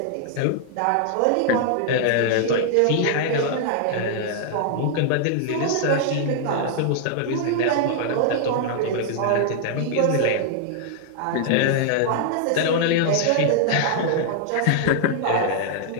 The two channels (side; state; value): both; different; correlation -0.01